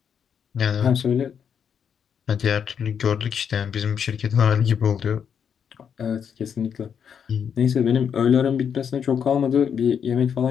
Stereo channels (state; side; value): quieter; right; 7.6 dB